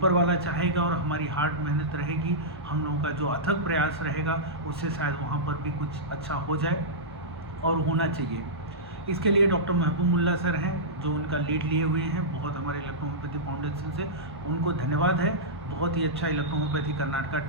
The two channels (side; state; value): both; normal; correlation -0.14